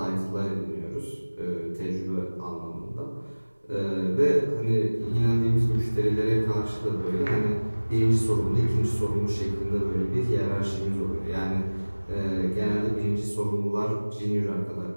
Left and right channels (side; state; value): both; inverted; correlation -1.00